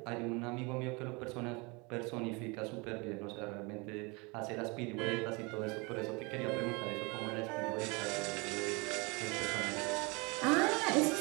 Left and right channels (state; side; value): quieter; left; 28.2 dB